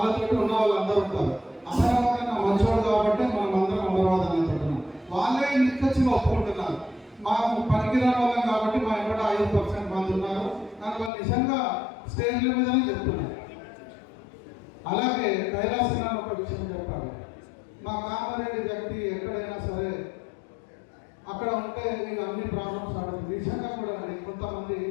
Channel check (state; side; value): drops out; right; at 11.1 s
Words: ఉన్న వాళ్ళందరూ ఉంటారు. అమరావతి నా మంచోడు కాబట్టి మనం అందరం అమరావతి అనుకుంటున్నాం. వాళ్ళే నిక్కచ్చిగా ఒప్పుకుంటున్నారు. మాకు పనికిరాని వాళ్ళం కాబట్టి మా ఇక్కడ 5% మంది ఉన్నారు కానీ వాళ్ళు నిజంగా స్టేజ్ల మీదనే చెప్తున్నారు. అలాగే కైలాసనాన్ని ఒక విషయం చెప్పాలి. మా కామారెడ్డి వ్యక్తి ఎక్కడైనా సరే అక్కడ ఉంటే మీకు అన్ని ప్రాబ్లమ్స్ ఆడుతుంది. నిజంగా కూడా కొంతమంది